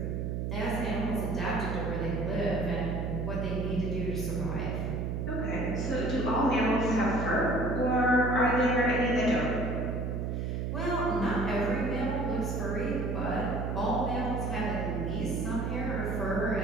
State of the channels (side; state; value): right; noise; hum, 1 dB below the sound